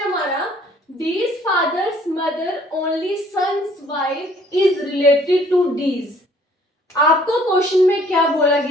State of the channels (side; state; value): both; normal; correlation 0.59